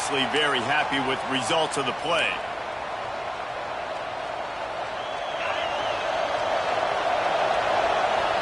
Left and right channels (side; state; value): both; identical; correlation 1.00